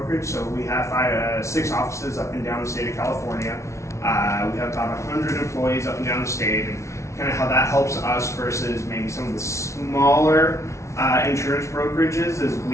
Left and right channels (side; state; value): right; late; 0.14 ms